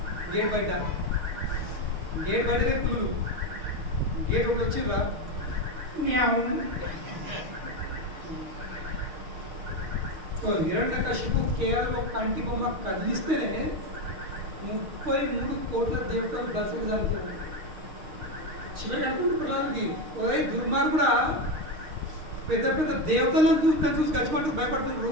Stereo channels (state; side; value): late; left; 6.5 ms